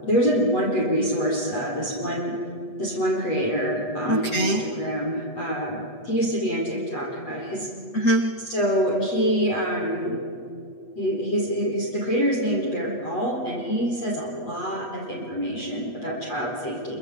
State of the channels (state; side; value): late; right; 8.2 ms